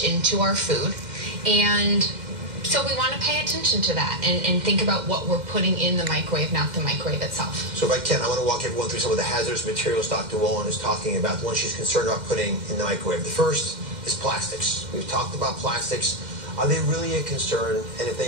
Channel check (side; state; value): left; late; 2.1 ms